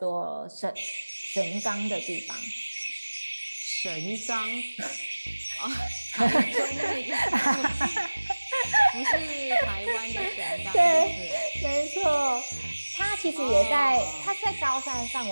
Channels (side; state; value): both; inverted; correlation -1.00